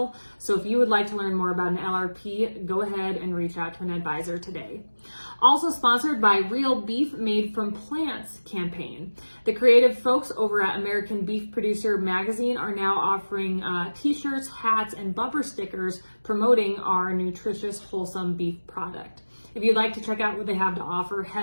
So if you would like to learn more about an LRP, go ahead and reach out to an advisor today. Also sponsored by Real Beef Made from Plants campaign. The creative folks over at American Beef Producer Magazine are now offering t-shirts, hats, and bumper stickers promoting our nutritious, wholesome beef product. If you'd like to check out what they have to offer,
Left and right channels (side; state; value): both; inverted; correlation -1.00